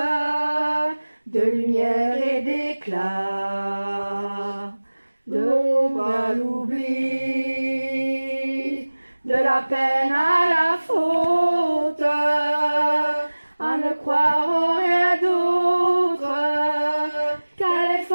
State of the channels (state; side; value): inverted; both; correlation -1.00